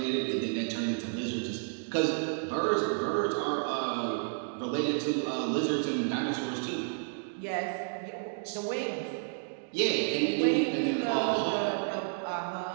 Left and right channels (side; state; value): left; silent; digital silence